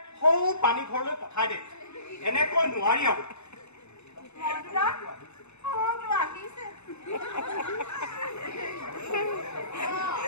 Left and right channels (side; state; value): right; late; 0.81 ms